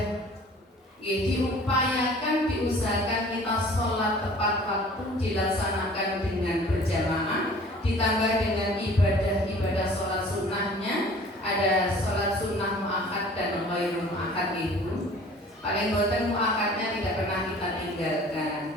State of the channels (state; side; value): normal; both; correlation 0.48